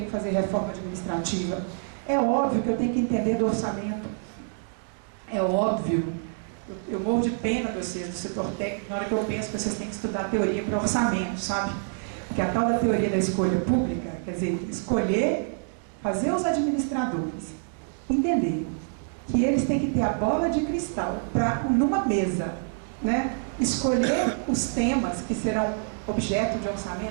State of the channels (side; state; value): left; silent; digital silence